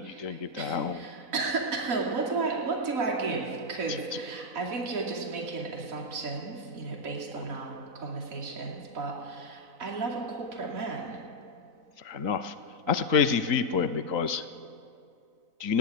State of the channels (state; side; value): late; left; 4.0 ms